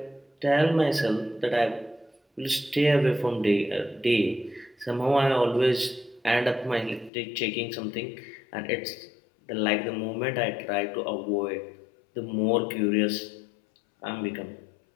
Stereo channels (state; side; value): drops out; right; at 7.1 s